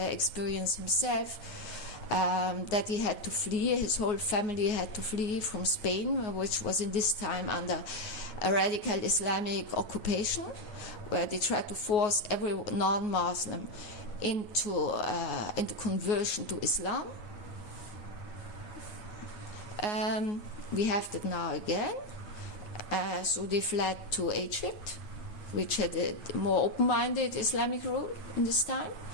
himself that he had to flee. His whole family had to flee from Spain, which was in this time under a radical Islamic occupation, where they tried to force every non-Muslim into conversion to Islam. We have that now again. So they fled to Egypt, which had a more open-minded Islamic rule in this time.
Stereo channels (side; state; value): right; late; 9.5 ms